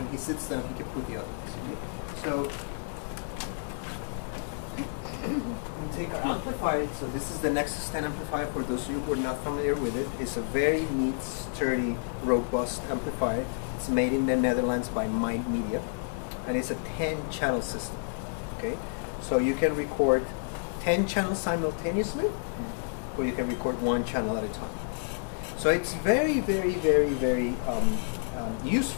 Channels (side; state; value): right; silent; digital silence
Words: he sits down, he can put the other ones. Okay? So we take our amplifier. So this is the Nexus 10 amplifier. For those of you who are not familiar with it, it's a very neat, sturdy, robust amplifier. It's made in the Netherlands by Mind Media, and it's a 10-channel system. Okay, so you can record 10 channels simultaneously, or you can record 1 channel at a time. So it's very, very, very, very